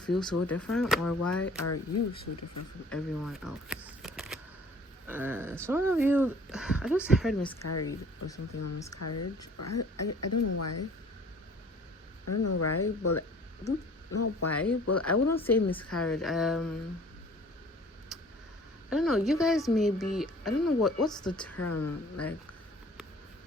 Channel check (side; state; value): both; normal; correlation 0.50